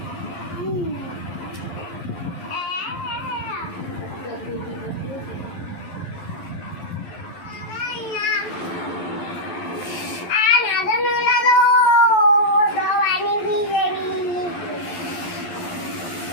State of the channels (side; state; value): right; late; 11 ms